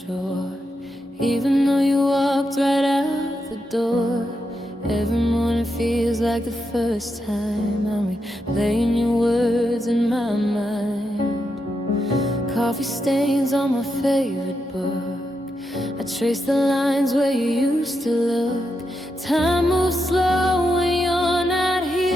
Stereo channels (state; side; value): normal; both; correlation 0.84